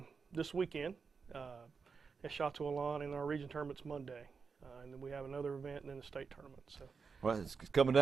this weekend at Chateau Alon, and our region tournament's Monday. And then we have another event and then the state tournament. So. Well, it's coming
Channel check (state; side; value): quieter; left; 5.4 dB